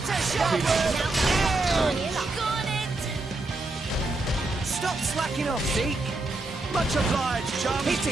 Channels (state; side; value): quieter; left; 3.0 dB